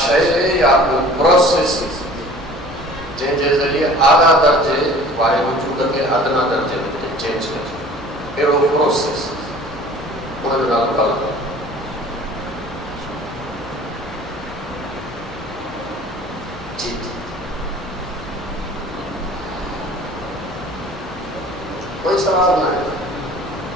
یا پروسیس جن کے ذریعے اعلیٰ درجے والے وجود کے ادنا درجے میں چینج کر اہڑو پروسیس ان جو نالو کال جی کوئی سوال نہ ہے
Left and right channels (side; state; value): both; normal; correlation 0.46